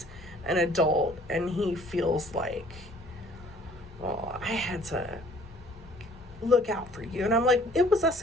an adult and he feels like, well, I had to look out for you. And I'm like, it was us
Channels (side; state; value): both; normal; correlation 0.55